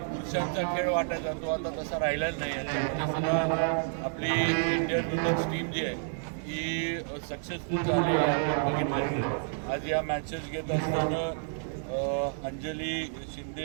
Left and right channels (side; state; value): left; silent; digital silence